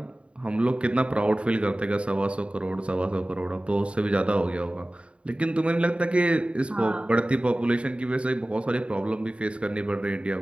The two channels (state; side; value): late; left; 0.059 ms